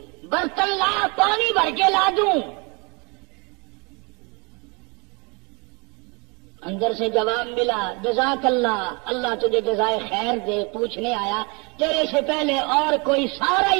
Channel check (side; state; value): left; quieter; 30.4 dB